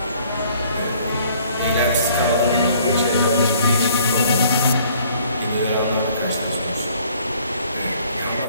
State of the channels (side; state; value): both; inverted; correlation -0.59